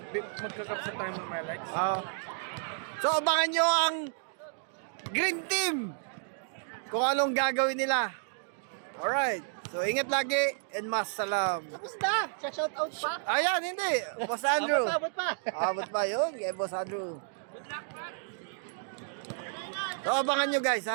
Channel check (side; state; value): left; silent; digital silence